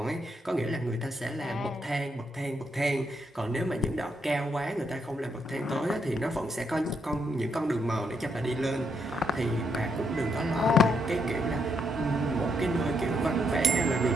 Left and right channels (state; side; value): normal; both; correlation 0.77